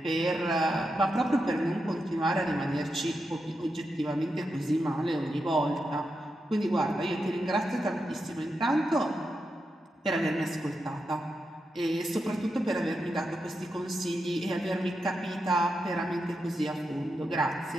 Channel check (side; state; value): both; normal; correlation 0.87